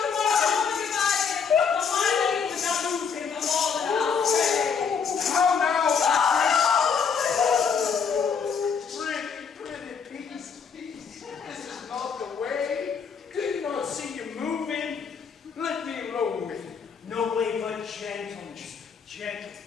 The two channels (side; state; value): right; quieter; 6.3 dB